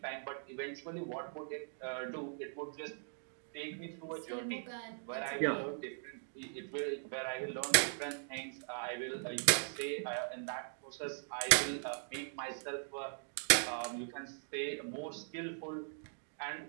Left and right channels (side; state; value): left; silent; digital silence